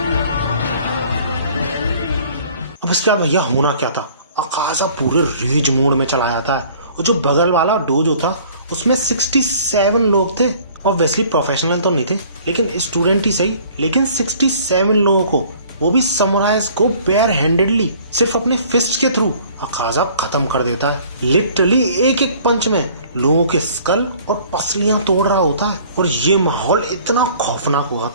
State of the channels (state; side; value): inverted; both; correlation -0.53